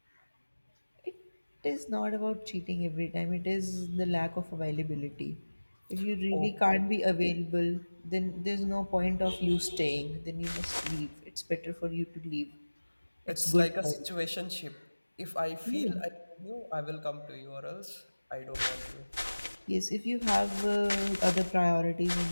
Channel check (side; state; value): both; inverted; correlation -1.00